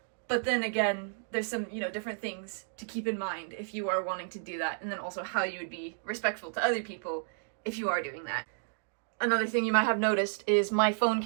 But then again, there's some, you know, different things to keep in mind if you are wanting to do that, and then also how you would be respectful to other people if you are doing that. Another thing you might have noticed is my phone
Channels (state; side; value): silent; left; digital silence